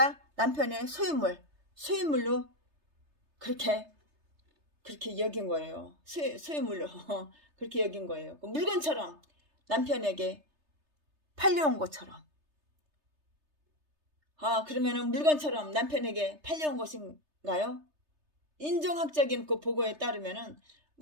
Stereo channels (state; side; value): late; left; 3.3 ms